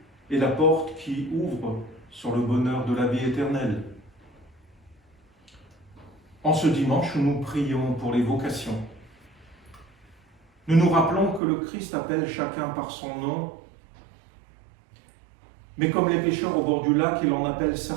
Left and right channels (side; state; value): left; drops out; at 11.4 s